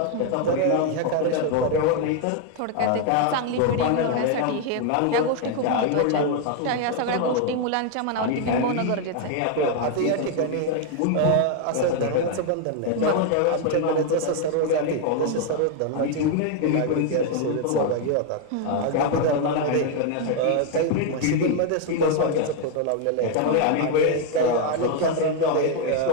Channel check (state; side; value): different; both; correlation 0.00